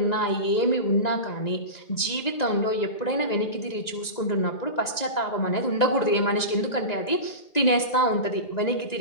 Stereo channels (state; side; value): late; right; 1.9 ms